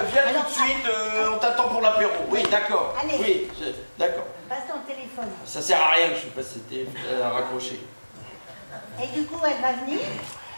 viens Alors, tout de suite, on t'attend pour l'apéro. Oui, d'accord. Allez. Oui, d'accord. Passe ton téléphone. Ça sert à rien que je sais pas si c'était à raccrocher. Et du coup, elle va venir?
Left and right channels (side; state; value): both; inverted; correlation -1.00